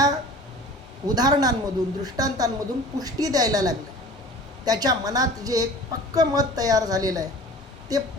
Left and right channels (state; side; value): normal; both; correlation 0.43